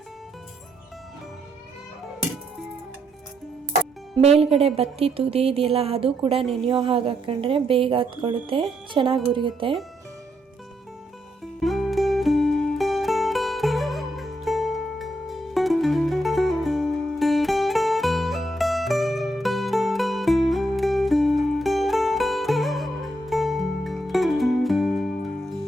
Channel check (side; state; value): both; normal; correlation 0.77